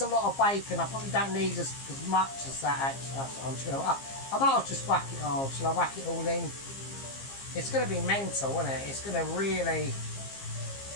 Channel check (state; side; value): late; right; 15 ms